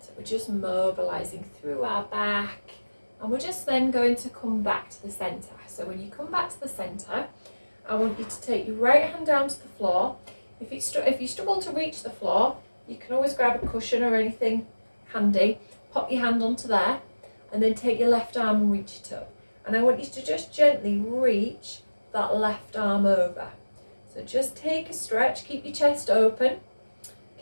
we're just mobilizing through our back, and we're just then going to come back to the center. So when you come back to the center, I want you to take your right hand down to the floor. If you struggle to reach the floor, you can always grab a cushion or anything handy, pop your hand onto there, and then take your left arm and reach it up. And I want you to just gently reach that left arm over. So just take a stretch, keep your chest open,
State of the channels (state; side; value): inverted; both; correlation -1.00